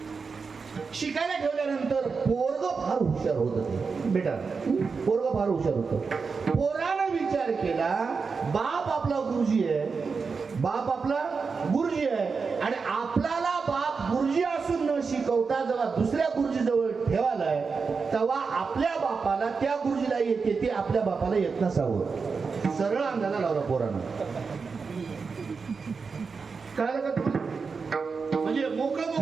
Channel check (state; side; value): quieter; left; 5.0 dB